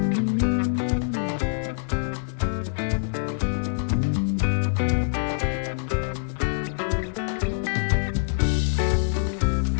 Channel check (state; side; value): silent; right; digital silence